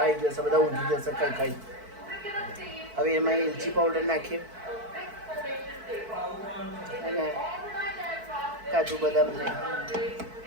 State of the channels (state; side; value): late; left; 4.6 ms